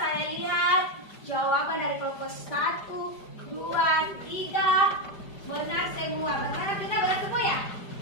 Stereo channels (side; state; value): right; late; 5.0 ms